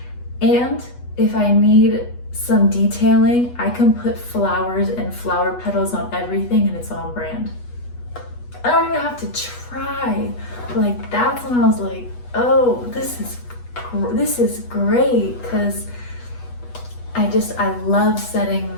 And if I need some detailing, I can put flowers and flower petals on everything and it's on brand. I don't even have to try. Like, that's when I was like, oh, this is great, because I love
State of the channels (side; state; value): right; late; 8.2 ms